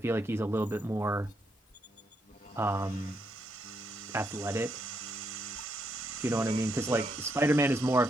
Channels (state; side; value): normal; both; correlation 0.78